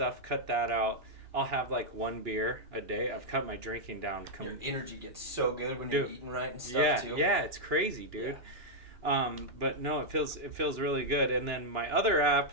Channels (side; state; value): left; late; 2.9 ms